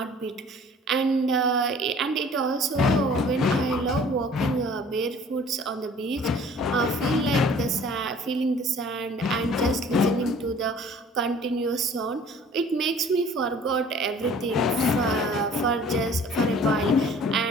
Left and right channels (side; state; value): both; normal; correlation 0.50